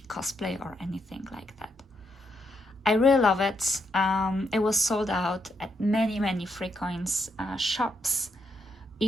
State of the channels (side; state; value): both; normal; correlation 0.79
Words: cosplay or anything like that. I really love it. It was sold out at many 3coins shops.